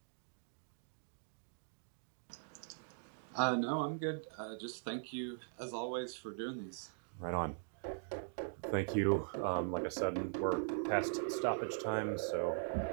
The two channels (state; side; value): silent; left; digital silence